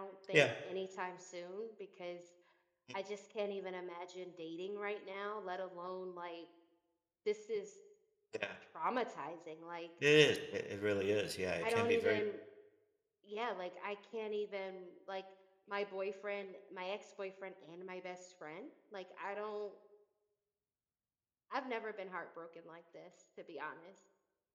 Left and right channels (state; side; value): identical; both; correlation 1.00